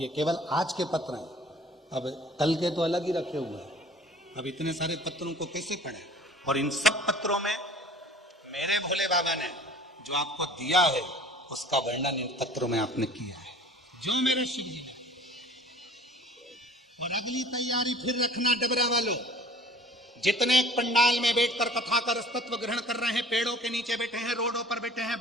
केवल आज के पत्र हैं। अब कल के तो अलग ही रखे हुए हैं। अब इतने सारे पत्रों को कैसे पढ़े? और इन सब पत्रों में मेरे भोले बाबा ने जो आपको दिया है उसका वर्णन इन पत्रों में आपने किया है, जो मेरे शिव जी ने। और अगली तैयारी फिर रखना डबरा वालों, जितने पंडाल में बैठकर कथा का रसतत्व ग्रहण कर रहे हैं, पेड़ों के नीचे बैठे हैं, रोडों पर बैठे हैं,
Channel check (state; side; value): normal; both; correlation 0.48